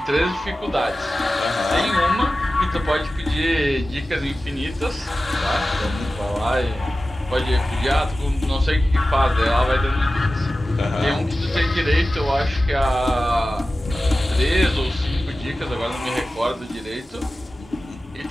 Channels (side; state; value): both; normal; correlation 0.95